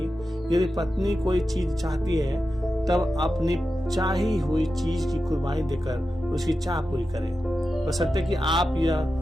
यदि पत्नी कोई चीज चाहती है, तब अपनी चाही हुई चीज की कुर्बानी देकर उसकी चाह पूरी करें, बशर्ते कि आप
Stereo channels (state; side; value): normal; both; correlation 0.91